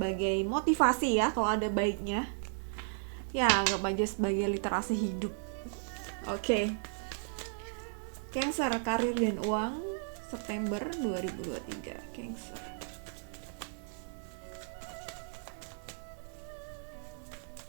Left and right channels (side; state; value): left; silent; digital silence